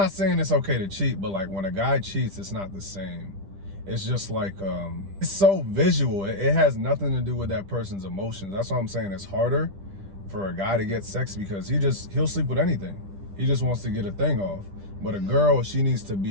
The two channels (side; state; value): left; late; 10 ms